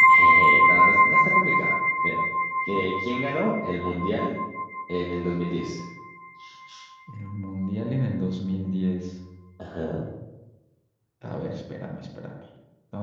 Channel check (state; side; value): identical; both; correlation 1.00